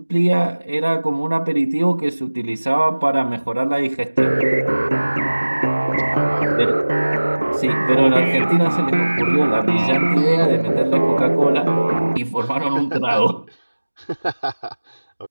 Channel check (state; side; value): inverted; both; correlation -1.00